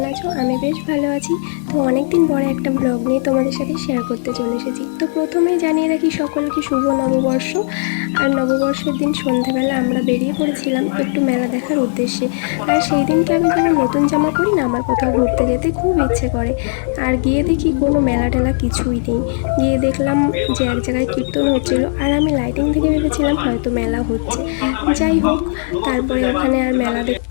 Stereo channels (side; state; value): right; silent; digital silence